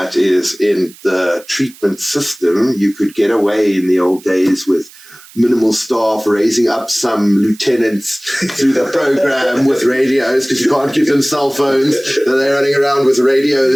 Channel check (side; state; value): right; noise; hiss, 22 dB below the sound